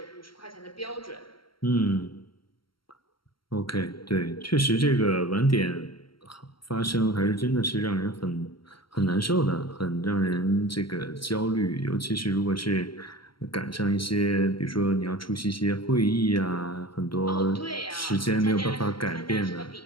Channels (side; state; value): right; late; 0.73 ms